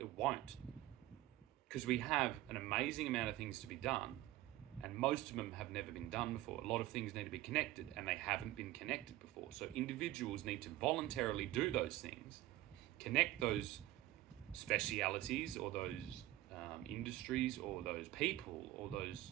won't, because we have an amazing amount of things to be done, and most of them have never been done before. A lot of things need to be connected, and they haven't been connected before. So individuals need to voluntarily do those things, connect those specialities or those industries or those people or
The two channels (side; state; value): left; quieter; 15.8 dB